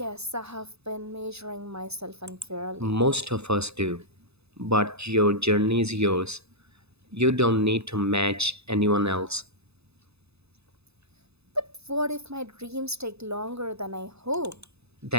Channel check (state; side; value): late; left; 0.79 ms